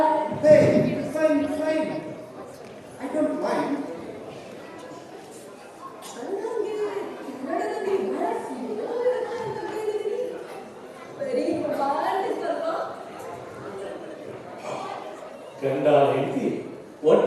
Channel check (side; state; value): both; identical; correlation 1.00